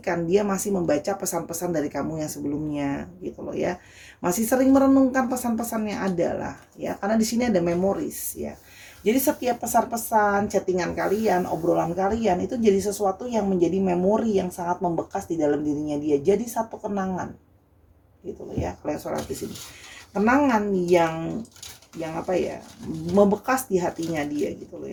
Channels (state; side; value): identical; both; correlation 1.00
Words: dia masih membaca pesan-pesan dari kamu yang sebelumnya gitu loh ya. Masih sering merenungkan pesan-pesan yang ada lah ya, karena di sini ada memories ya. Jadi setiap pesan-pesan, chattingan kalian, obrolan kalian itu jadi sesuatu yang menjadi memori yang sangat membekas di dalam dirinya dia. Jadi satu kenangan gitu loh ya, kalau yang sholat di sini. Kenangan yang apa ya, membekas di hatinya dia gitu loh